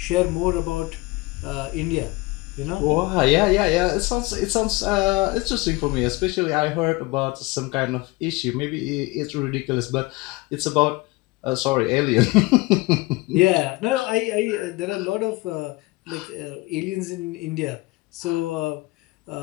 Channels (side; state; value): right; quieter; 22.5 dB